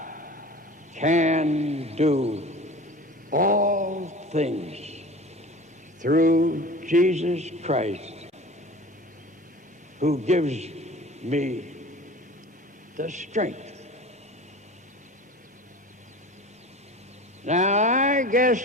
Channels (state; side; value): normal; both; correlation 0.38